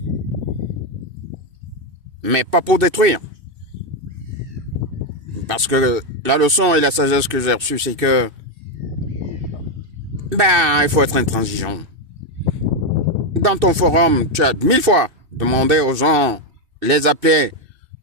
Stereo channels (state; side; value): late; left; 2.6 ms